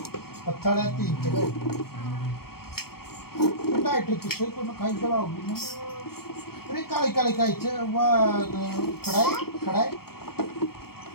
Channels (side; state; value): right; late; 0.94 ms